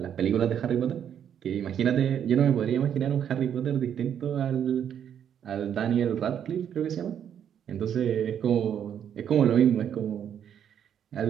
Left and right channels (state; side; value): quieter; left; 9.0 dB